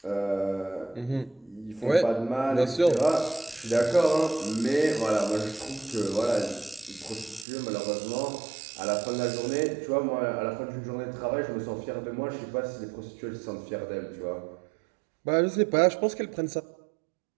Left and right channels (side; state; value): left; drops out; at 7.5 s